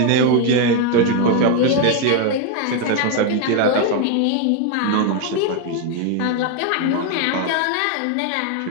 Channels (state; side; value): different; both; correlation 0.01